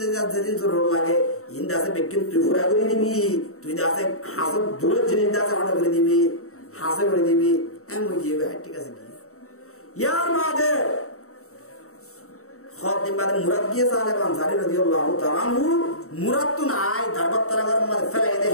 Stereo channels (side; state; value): right; late; 0.64 ms